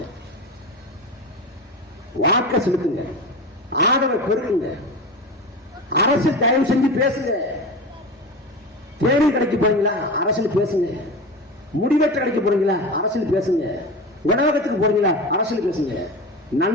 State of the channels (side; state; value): both; normal; correlation 0.27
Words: வாக்க செலுத்துங்க, ஆதரவை பெருக்குங்க. அரசு தயவு செஞ்சு பேசுங்க. தேடி கடைக்கு போறீங்களா அரசியல் பேசுங்க. முடிவெற்ற கடைக்கு போறீங்களா அரசியல் பேசுங்க. உணவகத்துக்கு போறீங்களா அரசியல் பேசுங்க.